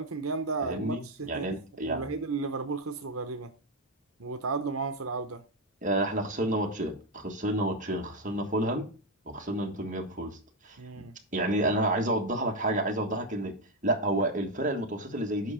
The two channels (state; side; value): normal; both; correlation 0.06